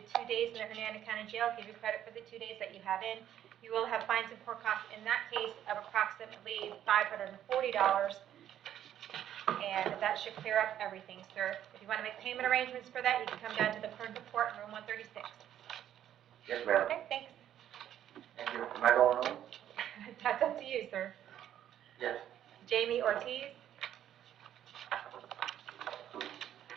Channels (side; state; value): left; quieter; 10.9 dB